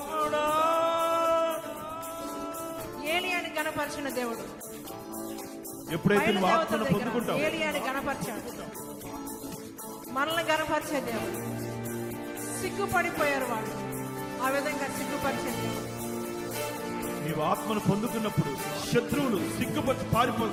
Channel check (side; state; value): both; identical; correlation 1.00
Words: ఏలియాని గణపరిచిన దేవుడు ఎప్పుడైతే నువ్వు ఆత్మను పొందుకుంటావు, ఏలియాని గణపరిచాడు. మనల్ని గణపరిచే దేవుడు. సిగ్గుపడిపోయారు వాళ్ళు, ఆ విధంగా సిగ్గుపరిచే దేవుడు. నీవు ఆత్మను పొందుకున్నప్పుడు శత్రువులు సిగ్గుపరిచి